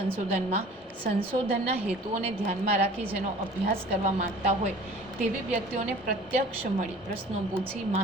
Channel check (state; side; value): normal; both; correlation 0.46